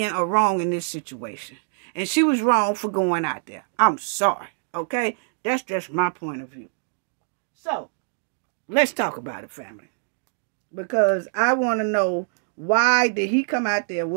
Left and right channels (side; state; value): left; silent; digital silence